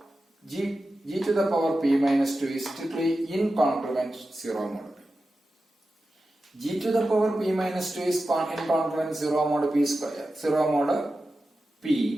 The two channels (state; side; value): normal; both; correlation 0.92